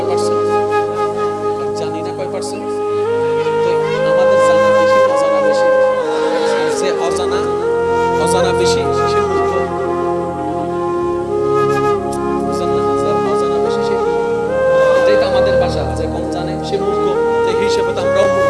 পার্সেন্ট? জানি না কয় পার্সেন্ট। আমাদের জানা বেশি, অজানা বেশি। যে অজানা বেশি সে মূর্খ। বুঝলেন না? যে অজানা বেশি সে, এটাই তো আমাদের ভাষা, যে কম জানে সে মূর্খ। সেই হিসেবে তো আমরাও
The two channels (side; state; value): both; identical; correlation 1.00